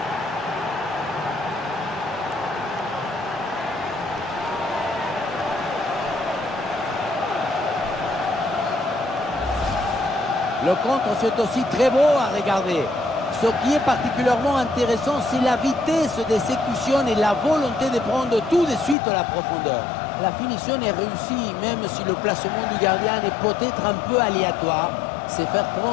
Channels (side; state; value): right; drops out; at 18.9 s